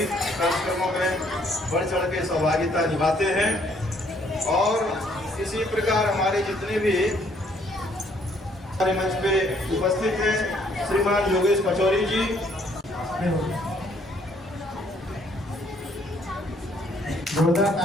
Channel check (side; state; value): both; normal; correlation 0.65